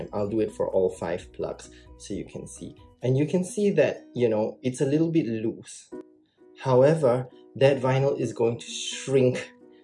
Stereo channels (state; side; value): identical; both; correlation 1.00